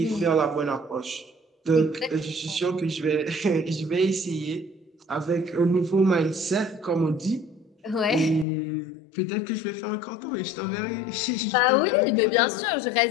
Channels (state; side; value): drops out; right; at 8.5 s